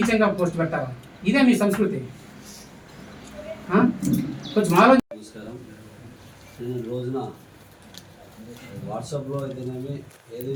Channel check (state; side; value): identical; both; correlation 1.00